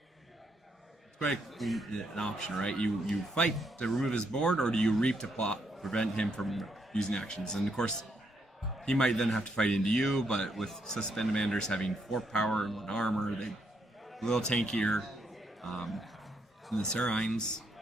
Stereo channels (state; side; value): normal; both; correlation 0.76